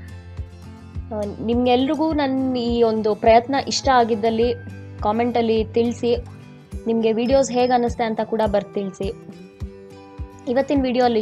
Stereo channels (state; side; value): identical; both; correlation 1.00